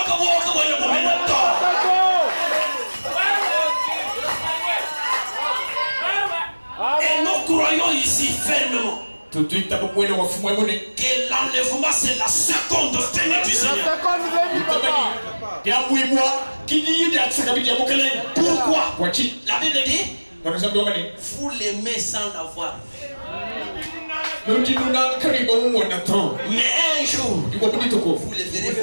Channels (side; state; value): both; inverted; correlation -1.00